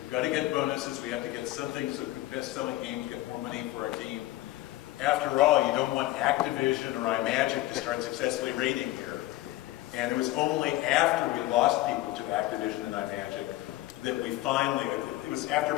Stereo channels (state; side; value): quieter; right; 16.9 dB